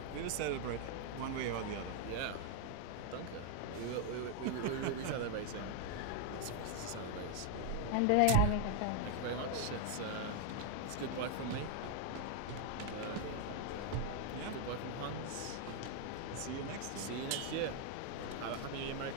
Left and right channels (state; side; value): different; both; correlation 0.00